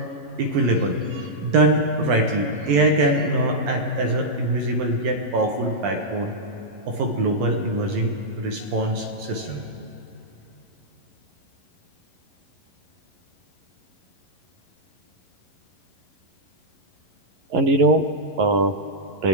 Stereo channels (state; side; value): late; left; 11 ms